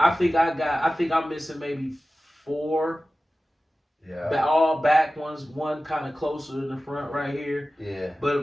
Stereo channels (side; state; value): both; normal; correlation 0.95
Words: think I'm missing maybe 4. Yeah. All back ones, one kind of closer to the front right here. Yeah.